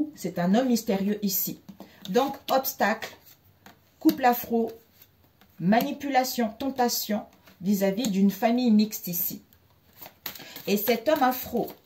c'est un homme mystérieux ici. Donc, obstacle, couple afro, manipulation, tentation vis-à-vis d'une famille mixte ici. Et cet homme afro,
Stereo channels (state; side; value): identical; both; correlation 1.00